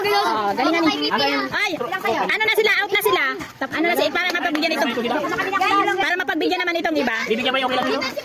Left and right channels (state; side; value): identical; both; correlation 1.00